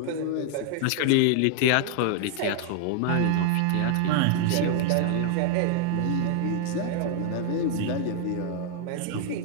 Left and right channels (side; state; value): both; different; correlation 0.00